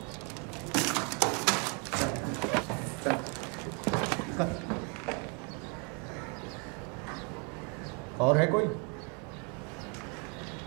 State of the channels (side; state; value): left; quieter; 35.6 dB